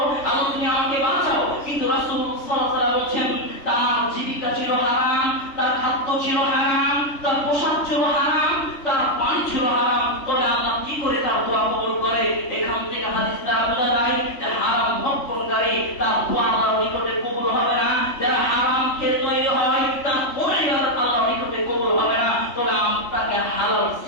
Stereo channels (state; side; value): late; right; 3.4 ms